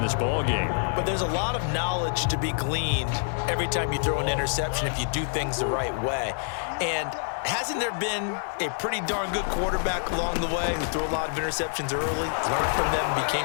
this ball game. But there's a lot of knowledge to be gleaned every time you throw an interception if you do things the right way. And hasn't there been a pretty darn good quarterback along the way who threw a lot of interceptions early, learned from them, and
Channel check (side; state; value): right; silent; digital silence